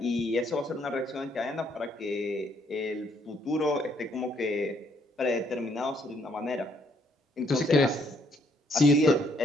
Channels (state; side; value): normal; both; correlation 0.69